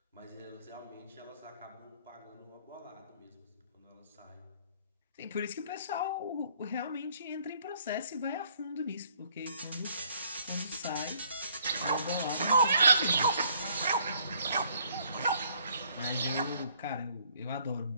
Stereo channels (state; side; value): inverted; both; correlation -0.63